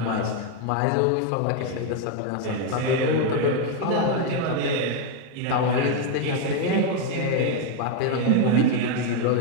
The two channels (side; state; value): both; different; correlation 0.01